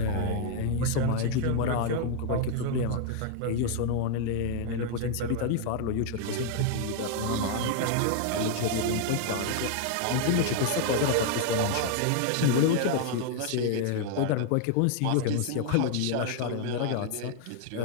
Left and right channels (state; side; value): different; both; correlation 0.00